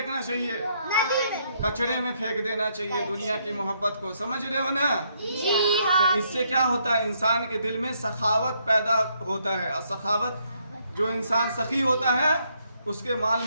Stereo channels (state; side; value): inverted; both; correlation -0.73